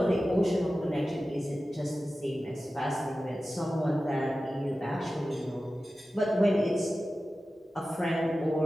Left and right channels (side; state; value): both; normal; correlation 0.94